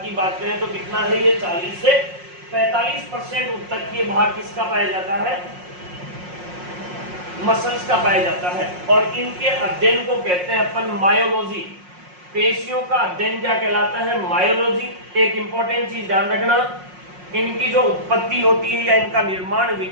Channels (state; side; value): late; left; 5.5 ms